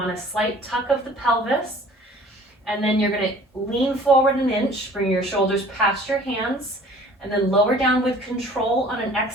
a slight tuck of the pelvis. And then you're going to lean forward an inch, bring your shoulders past your hands, and then lower down with control on an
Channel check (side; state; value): both; normal; correlation 0.50